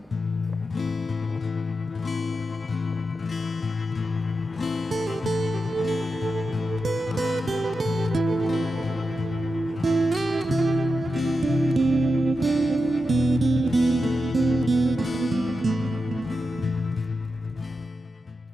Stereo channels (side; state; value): both; normal; correlation 0.89